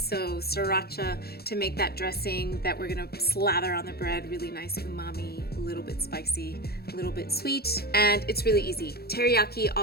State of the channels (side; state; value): right; late; 0.46 ms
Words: to make that dressing that we're gonna slather on the bread. Really nice umami, a little bit spicy, a little bit sweet, and it's really easy. Teriyaki